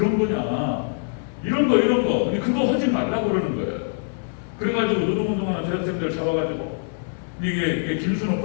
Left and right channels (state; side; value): silent; right; 63 dB below the other